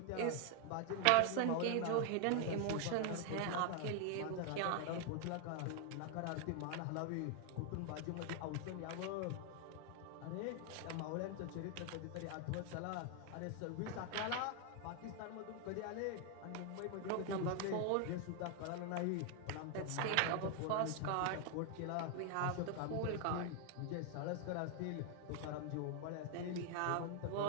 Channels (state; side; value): different; both; correlation 0.00